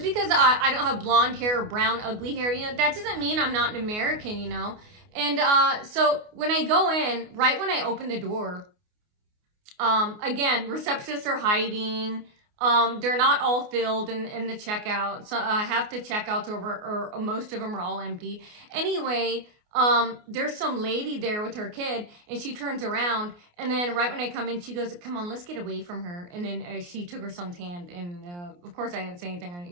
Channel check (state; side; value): late; left; 29 ms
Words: because I don't have blonde hair or brown, ugly hair, you know, that doesn't mean I'm not an American, you know. And so when I go in, right when I open the door, again, receptionists are hiding. They're not all filled in the checkout. So I have to checkouts or most of them are all empty. Anyway, there's some lady there with her kid, and she turns around, and then right when I come in, she goes, come on, let's get away from her. And then she took her son's hand, and of course I didn't say anything. I